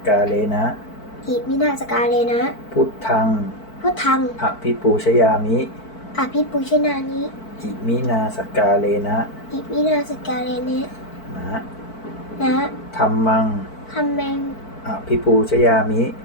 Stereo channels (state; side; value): late; right; 4.5 ms